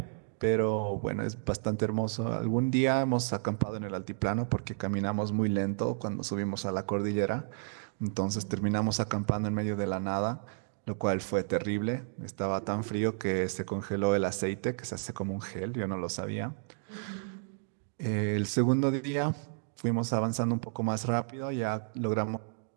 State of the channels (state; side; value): silent; left; digital silence